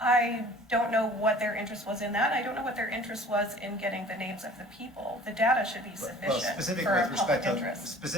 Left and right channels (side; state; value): both; normal; correlation 0.48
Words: I don't know what their interest was in that. I don't know what their interest was in getting the names of the people. The data should be sufficient for a public interest.